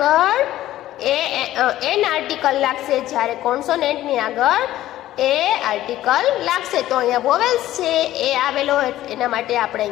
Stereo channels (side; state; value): right; quieter; 14.2 dB